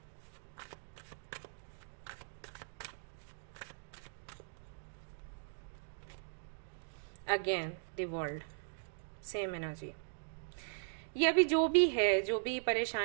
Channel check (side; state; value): left; silent; digital silence